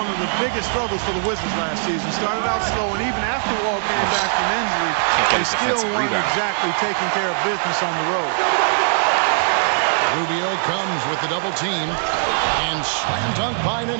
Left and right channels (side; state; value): left; silent; digital silence